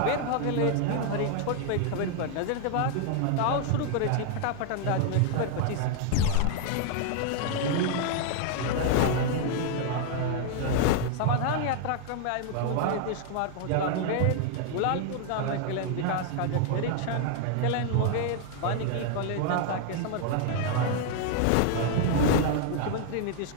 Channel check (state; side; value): different; both; correlation 0.00